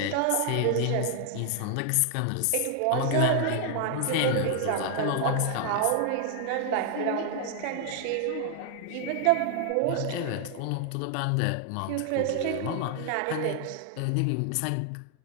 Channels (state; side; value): different; both; correlation 0.00